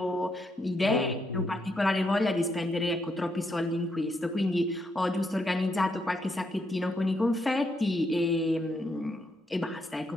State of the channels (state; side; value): normal; both; correlation 0.77